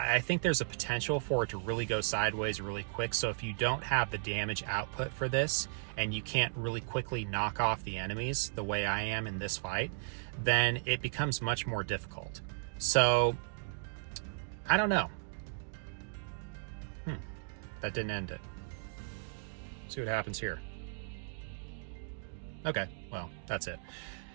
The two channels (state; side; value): silent; left; digital silence